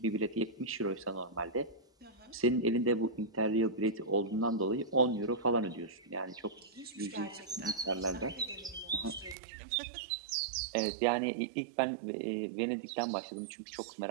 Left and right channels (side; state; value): left; drops out; at 9.3 s